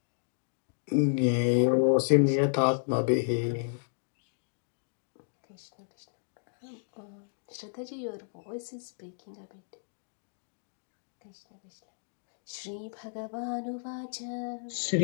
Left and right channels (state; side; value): silent; right; digital silence